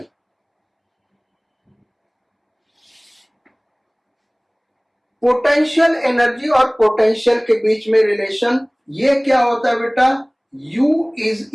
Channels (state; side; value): identical; both; correlation 1.00